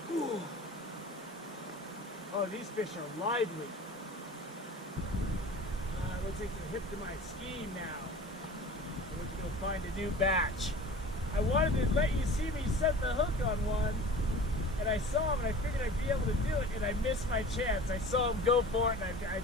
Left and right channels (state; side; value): normal; both; correlation 0.40